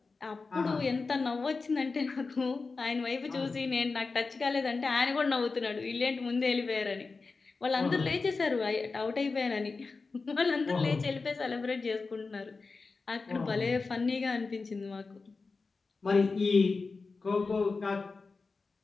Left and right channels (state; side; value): quieter; right; 4.2 dB